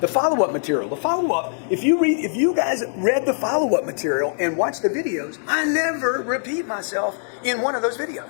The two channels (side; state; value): right; silent; digital silence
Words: The follow-up material. The follow-up, if you guys read the follow-up material and watch the videos, I never repeat myself in one of those